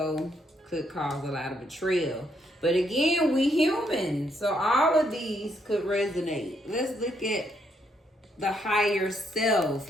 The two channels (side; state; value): both; normal; correlation 0.74